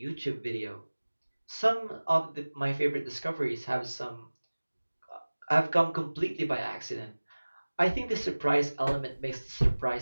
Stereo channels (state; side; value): inverted; both; correlation -1.00